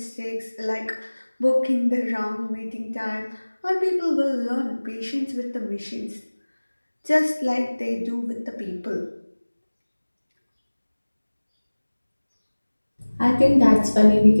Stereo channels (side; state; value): both; inverted; correlation -1.00